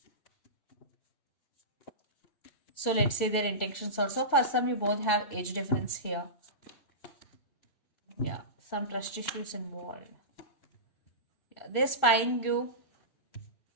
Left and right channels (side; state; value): right; late; 2.6 ms